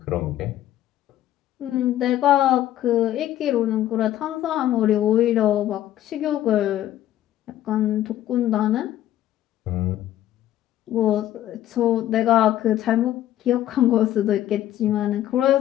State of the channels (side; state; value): right; quieter; 12.9 dB